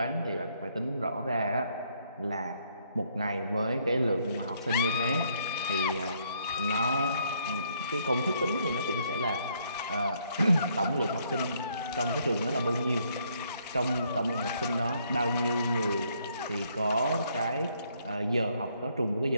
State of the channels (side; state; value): both; inverted; correlation -0.70